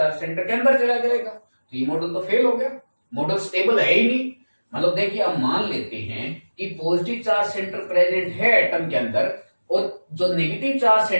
सेंटर के अंदर चला जाएगा। तो ये मॉडल तो फेल हो गया, मॉडल स्टेबल है ही नहीं। मतलब देखिए अब मान लेते हैं कि पॉजिटिव चार्ज सेंटर प्रेजेंट है एटम के अंदर और जो नेगेटिव चार्ज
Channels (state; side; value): inverted; both; correlation -1.00